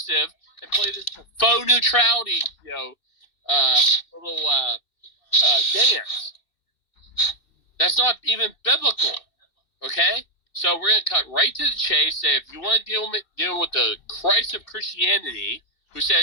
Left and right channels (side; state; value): right; late; 2.6 ms